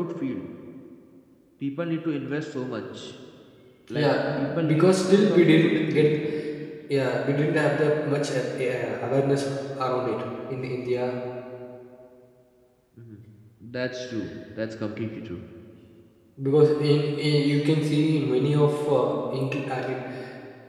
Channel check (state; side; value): identical; both; correlation 1.00